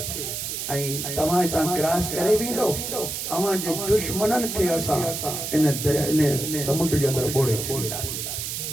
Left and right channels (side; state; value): right; noise; hiss, 4 dB below the sound